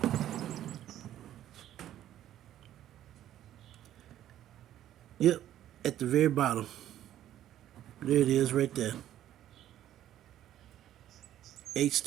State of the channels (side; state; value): left; quieter; 12.1 dB